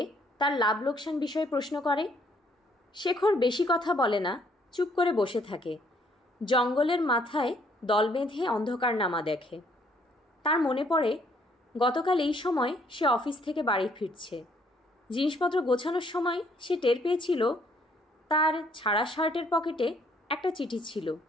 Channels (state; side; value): normal; both; correlation 0.66